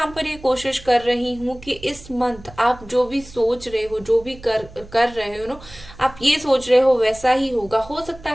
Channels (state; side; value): noise; right; hum, 19 dB below the sound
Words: पर ये कोशिश कर रही हूँ कि इस मंथ आप जो भी सोच रहे हो, जो भी कर रहे हो आप ये सोच रहे हो वैसा ही होगा। हो सकता